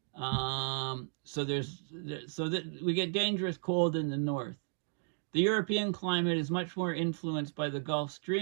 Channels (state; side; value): silent; left; digital silence